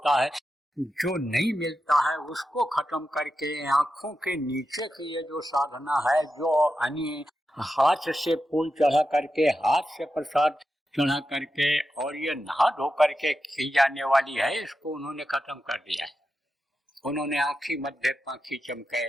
है, जो नहीं मिलता है उसको खत्म करके आंखों के नीचे की ये जो साधना है, जो हाथ से फूल चढ़ा करके, हाथ से प्रसाद चढ़ा करके और ये नहा धो करके की जाने वाली है, इसको उन्होंने खत्म कर दिया है। उन्होंने आँखी मध्य पाखी चमके,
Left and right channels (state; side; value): normal; both; correlation 0.89